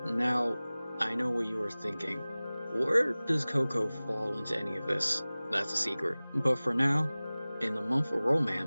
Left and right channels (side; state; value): both; inverted; correlation -0.99